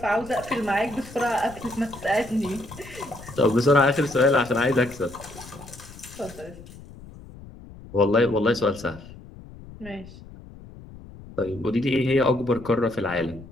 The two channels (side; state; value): left; noise; rumble, 17 dB below the sound